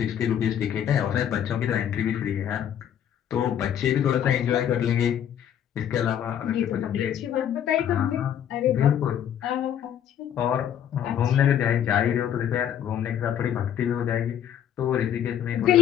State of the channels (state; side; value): quieter; right; 9.7 dB